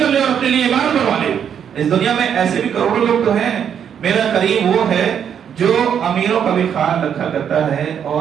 لے اور اپنے لیے عمارت بنوا لے۔ اس دنیا میں ایسے بھی کروڑوں لوگ تو ہیں۔ میرا کریم وہ ہے جو امیروں کا بھی خیال رکھا کرتا ہے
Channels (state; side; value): quieter; left; 8.4 dB